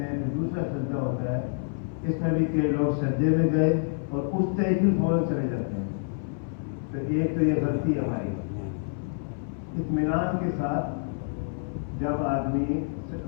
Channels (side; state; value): right; silent; 59 dB below the other